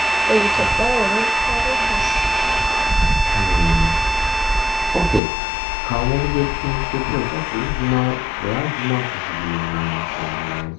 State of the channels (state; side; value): drops out; right; at 5.2 s